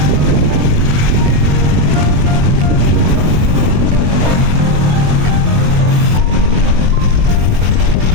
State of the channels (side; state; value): left; late; 21 ms